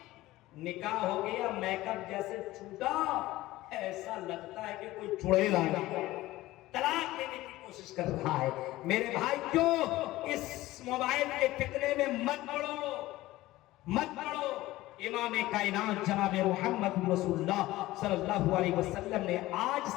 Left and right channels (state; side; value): quieter; right; 17.3 dB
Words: نکاح ہو گیا، میک اپ جیسے چھوٹا، ایسا لگتا ہے کہ کوئی چڑیل آ گیا، طلاق دینے کی کوشش کر رہا ہے۔ میرے بھائی کیوں اس موبائل کے فتنے میں مت پڑو، مت پڑو۔ امام کائنات جناب محمد رسول اللہ صلی اللہ علیہ وسلم نے آج